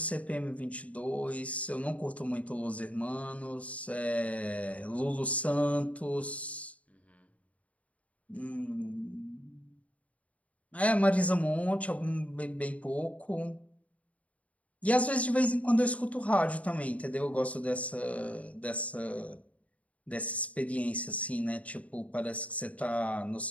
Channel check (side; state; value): right; late; 0.067 ms